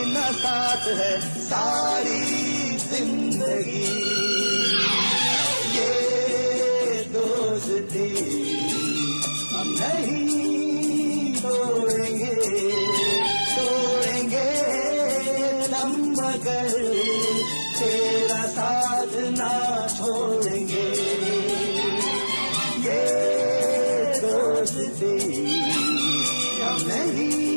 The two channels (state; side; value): inverted; both; correlation -1.00